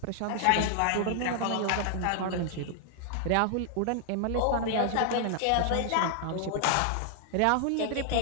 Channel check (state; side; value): different; both; correlation 0.00